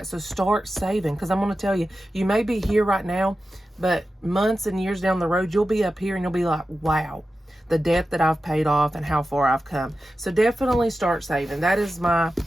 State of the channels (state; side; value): normal; both; correlation 0.92